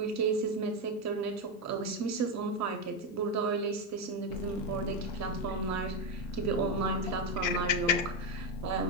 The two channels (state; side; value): normal; both; correlation 0.10